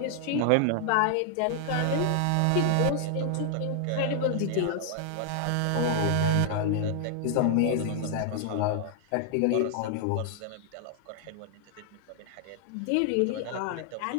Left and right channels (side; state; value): both; different; correlation 0.00